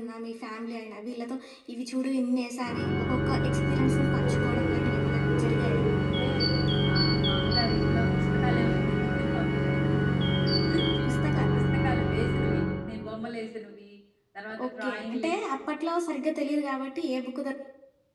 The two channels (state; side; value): identical; both; correlation 1.00